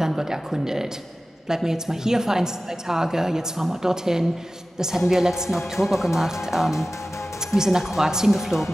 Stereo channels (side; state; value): both; normal; correlation 0.95